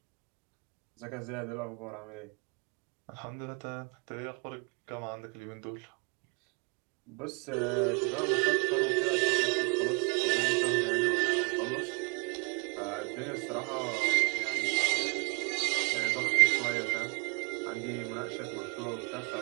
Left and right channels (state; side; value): quieter; left; 34.5 dB